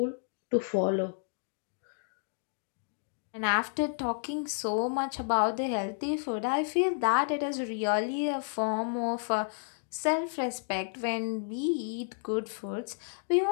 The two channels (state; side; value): silent; right; digital silence